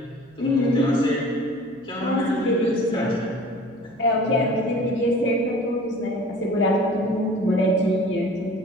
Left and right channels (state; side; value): noise; right; hum, 29 dB below the sound